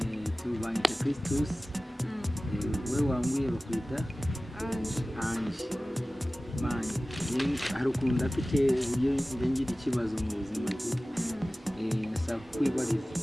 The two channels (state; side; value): normal; both; correlation 0.97